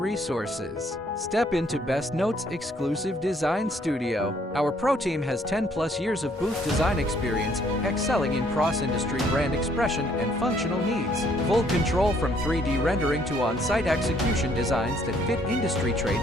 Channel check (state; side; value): normal; both; correlation 0.65